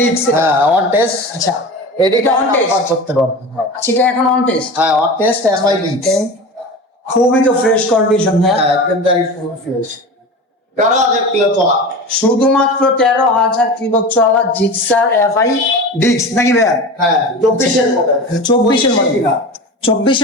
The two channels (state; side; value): normal; both; correlation 0.31